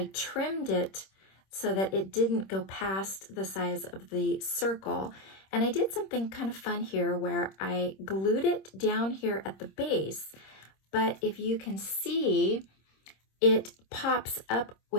trimmed it so that it didn't go past the size of the circle. And I did something kind of fun here where I glued it down here at the base. But if you can see, it pops up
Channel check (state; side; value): late; right; 26 ms